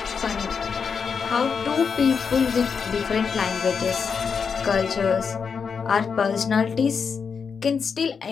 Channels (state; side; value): quieter; right; 6.0 dB